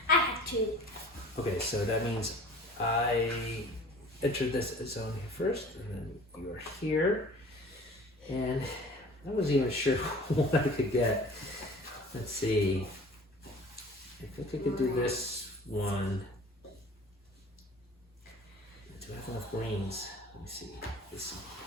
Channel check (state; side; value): normal; both; correlation 0.45